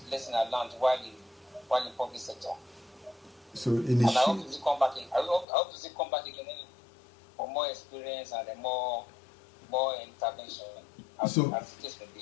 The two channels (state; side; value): drops out; right; at 5.5 s